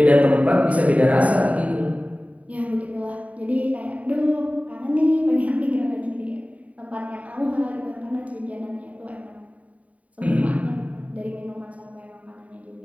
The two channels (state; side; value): late; left; 0.069 ms